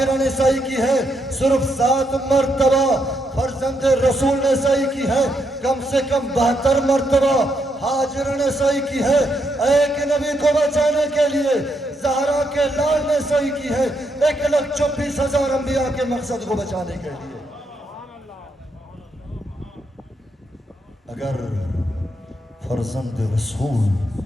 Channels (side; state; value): both; normal; correlation 0.78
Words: نے سعی کی ہے۔ صرف 7 مرتبہ فرزند رسول نے سعی کی ہے، کم سے کم 72 مرتبہ ہاجرہ نے سعی کی ہے ایک نبی کو بچانے کے لیے۔ زہرا کے لال نے سعی کی ہے 1,24,000 انبیاء کے مقصد کو بچانے کے لیے۔ اگر فرزند رسول